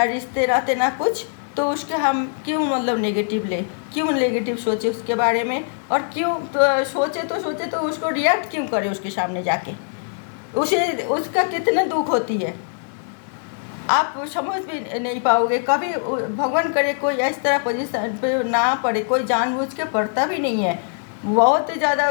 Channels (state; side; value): silent; right; digital silence